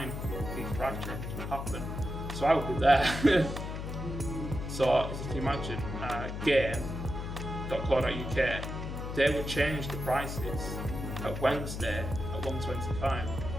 these price changes would happen. So I would be there. So as you can imagine, game.co.uk, they would change the prices at Wednesday at 1.25.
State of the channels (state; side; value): noise; left; hum, 5 dB below the sound